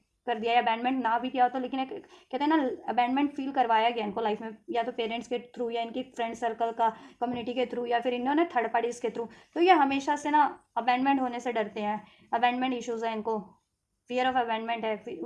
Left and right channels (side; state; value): both; identical; correlation 1.00